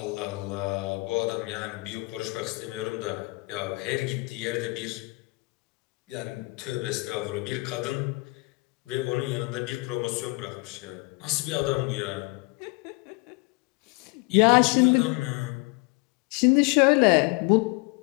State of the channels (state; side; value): quieter; right; 26.4 dB